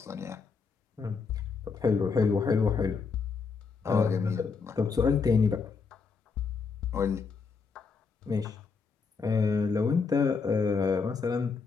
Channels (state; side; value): quieter; right; 5.0 dB